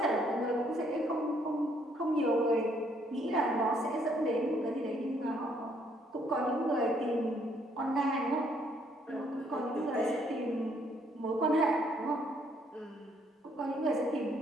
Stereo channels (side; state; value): both; normal; correlation 0.68